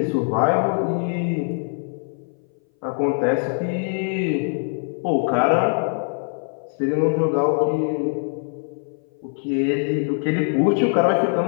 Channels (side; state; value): right; silent; 59 dB below the other